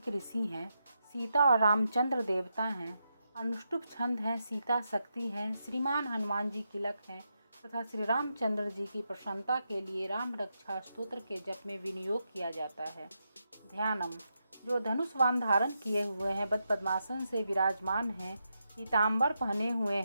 ऋषि हैं, सीता और रामचंद्र देवता हैं, अनुष्टुप छंद हैं, सीता शक्ति हैं, श्रीमान हनुमान जी तिलक हैं तथा श्री रामचंद्र जी की प्रसन्नता के लिए राम रक्षा स्तोत्र के जप में विनियोग किया जाता है। ध्यानम। जो धनुष वाण धारण किए हुए हैं, बद पद्मासन से विराजमान हैं, पीताम्बर पहने हुए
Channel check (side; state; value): both; inverted; correlation -0.85